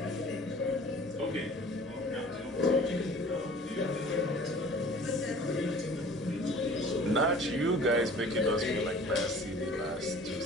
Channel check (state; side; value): normal; both; correlation 0.47